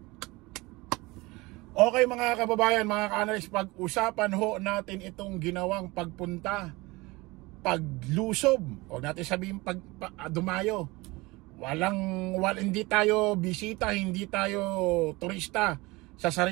Okay mga kababayan, mga ka-analyst, pag-usapan ho natin itong ginawang pagpunta, paglusob, o natin sabihin dumayo. Hindi tayo bisita, hindi tayo turista sa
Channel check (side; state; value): left; quieter; 22.7 dB